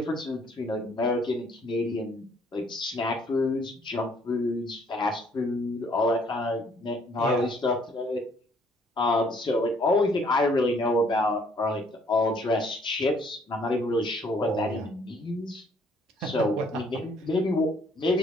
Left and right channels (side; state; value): both; normal; correlation 0.63